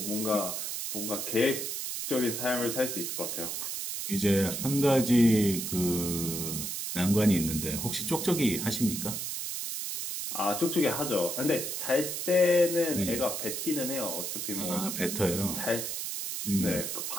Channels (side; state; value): right; noise; hiss, 4 dB below the sound